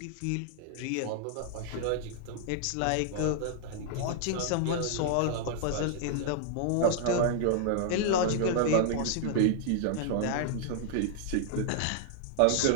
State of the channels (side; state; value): both; different; correlation 0.00